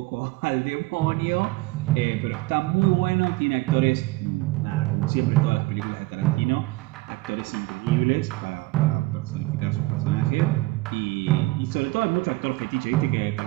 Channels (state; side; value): quieter; left; 20.3 dB